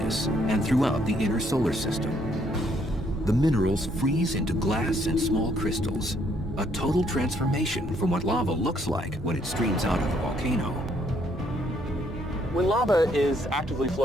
and throughout the inner solar system. The minerals freeze into glass and small crystals, a total transformation from what lava looks like when it streams out of the volcano. When lava is actively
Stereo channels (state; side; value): normal; both; correlation 0.69